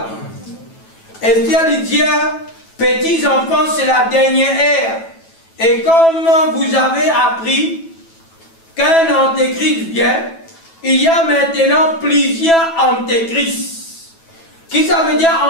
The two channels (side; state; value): right; late; 9.1 ms